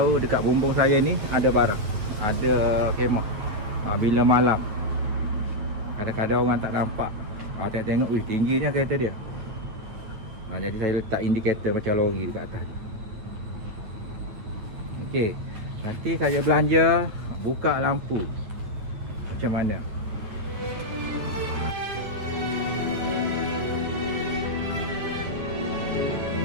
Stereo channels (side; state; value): left; late; 9.1 ms